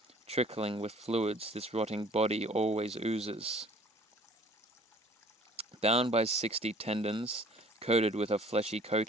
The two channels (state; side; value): normal; both; correlation 0.53